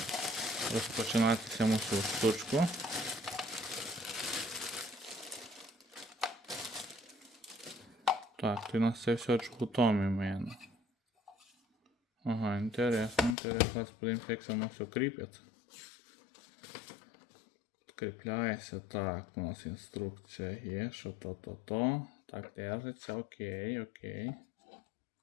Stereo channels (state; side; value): drops out; right; at 13.4 s